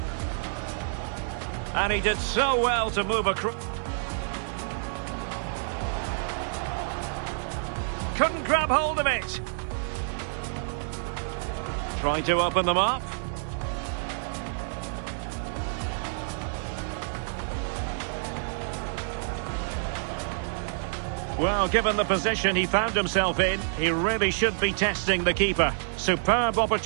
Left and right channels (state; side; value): silent; left; 59 dB below the other